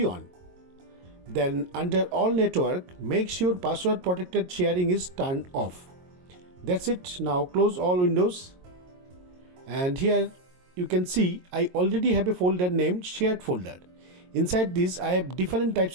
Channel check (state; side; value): late; left; 22 ms